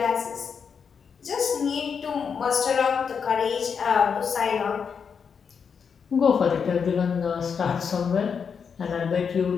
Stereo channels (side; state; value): right; quieter; 6.4 dB